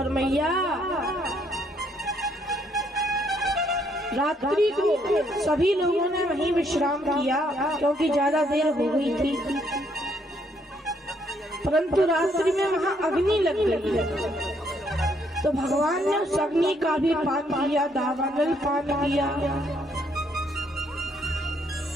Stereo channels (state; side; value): normal; both; correlation 0.70